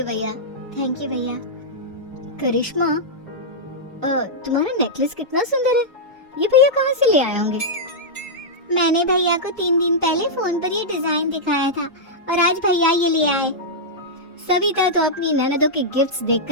भैया। थैंक यू भैया। करिश्मा, तुम्हारा नेकलेस कितना सुंदर है, ये भैया कहाँ से ले आए होंगे? मैंने भैया को 3 दिन पहले फोन पर ये डिजाइन दिखाया था और आज भैया ये ले आए। सविता तो अपनी ननदों के गिफ्ट्स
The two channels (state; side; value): normal; both; correlation -0.09